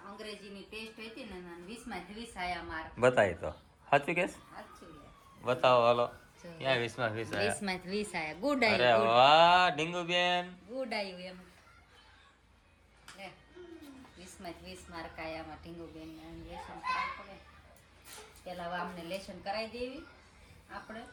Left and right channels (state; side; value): identical; both; correlation 1.00